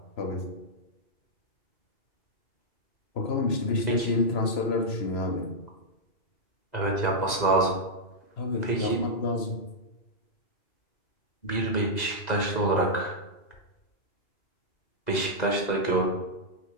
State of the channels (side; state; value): right; late; 2.0 ms